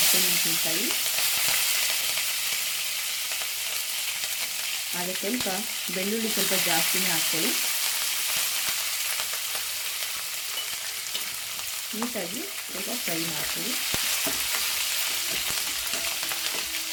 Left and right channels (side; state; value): both; identical; correlation 1.00